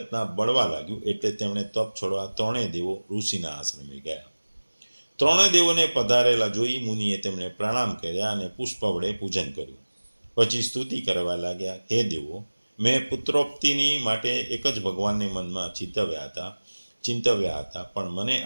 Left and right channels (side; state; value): both; inverted; correlation -1.00